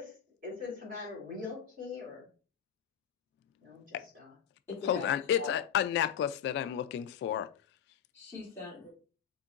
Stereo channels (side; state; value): right; quieter; 8.7 dB